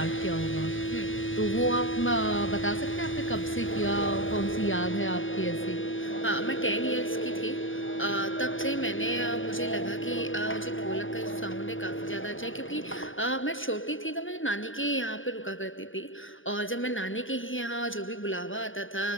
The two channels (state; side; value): late; right; 0.57 ms